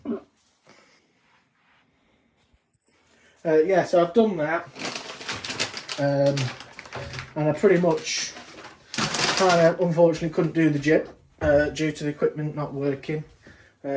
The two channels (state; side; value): identical; both; correlation 1.00